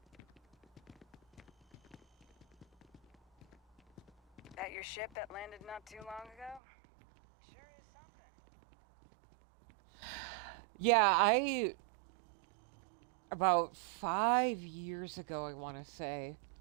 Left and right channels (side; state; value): left; drops out; at 6.6 s